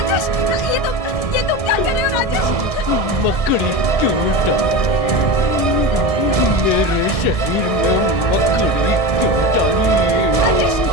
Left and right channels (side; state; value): right; late; 1.7 ms